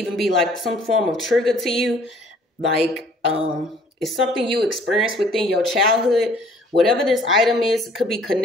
be like some form of trigger to you. Like, it's something you experienced within your childhood. Whatever this item is, it could be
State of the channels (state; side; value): normal; both; correlation 0.56